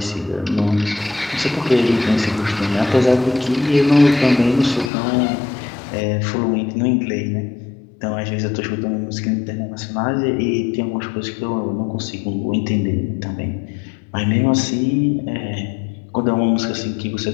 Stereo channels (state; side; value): drops out; right; at 4.9 s